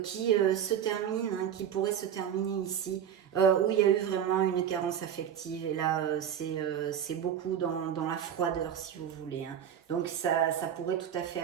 qui se termine, hein, qui pourrait se terminer ici, où il y a eu vraiment une carence affective. Et là, c'est beaucoup dans la froideur, si vous voulez. Hein. Donc ça pourrait tout à fait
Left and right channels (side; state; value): left; quieter; 9.2 dB